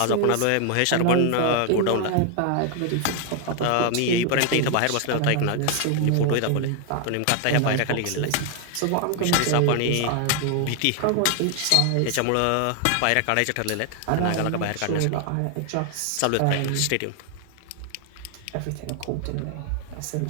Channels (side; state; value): both; different; correlation 0.00